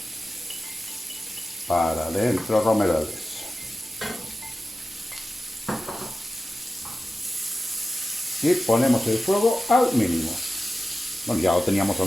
para dentro romerales. Y ponemos el fuego al mínimo. Bueno, ya lo teníamos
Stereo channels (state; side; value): normal; both; correlation 0.94